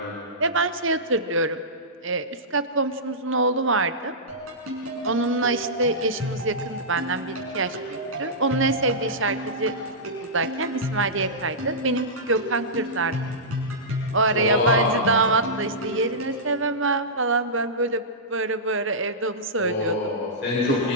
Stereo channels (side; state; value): both; normal; correlation -0.16